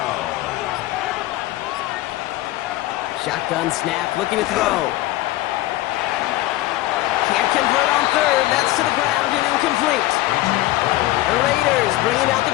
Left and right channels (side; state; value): right; quieter; 17.0 dB